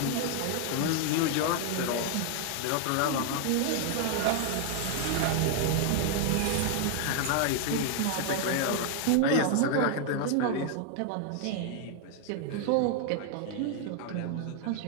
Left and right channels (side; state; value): both; different; correlation 0.00